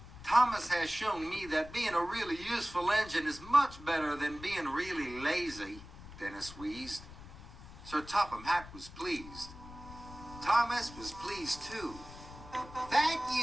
"Thomas has shown me that being a really useful engine is much better than being really lazy," Dennis wheezed. Sir Topham Hatt was pleased. Thomas was pleased too. "Thank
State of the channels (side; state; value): left; noise; rumble, 16 dB below the sound